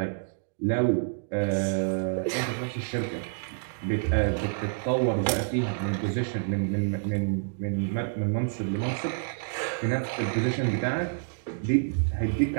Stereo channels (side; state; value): left; silent; digital silence